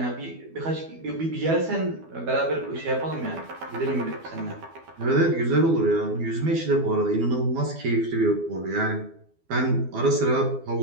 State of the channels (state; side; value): late; left; 12 ms